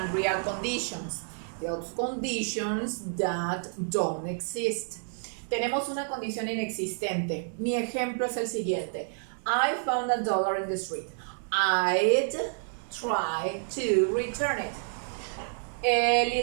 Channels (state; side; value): silent; left; 58 dB below the other